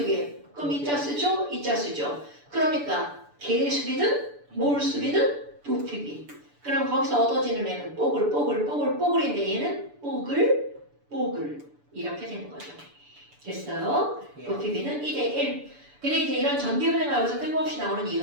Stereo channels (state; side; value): late; left; 6.9 ms